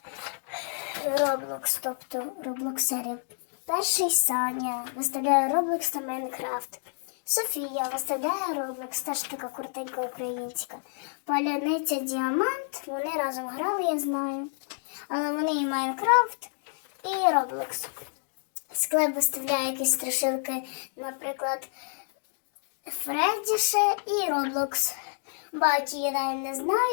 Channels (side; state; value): right; silent; 59 dB below the other